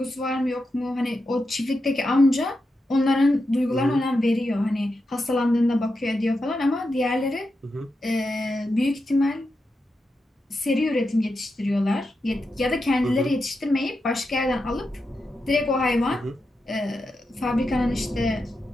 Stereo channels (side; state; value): both; normal; correlation 0.88